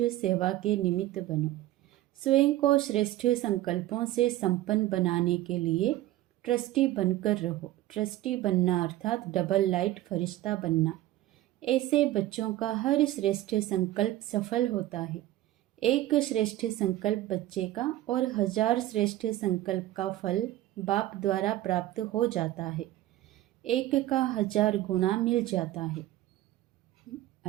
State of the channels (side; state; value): left; quieter; 15.1 dB